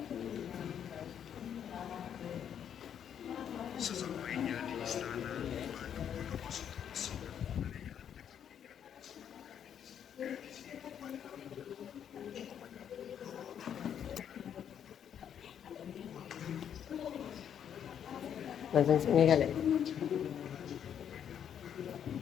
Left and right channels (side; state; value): right; quieter; 8.9 dB